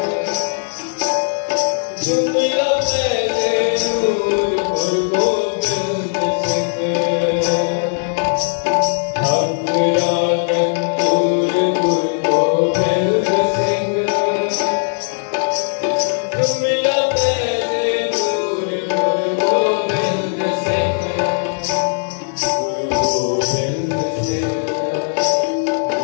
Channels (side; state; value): right; silent; 67 dB below the other